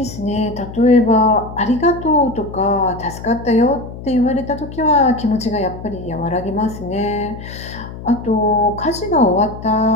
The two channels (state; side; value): noise; left; hum, 12 dB below the sound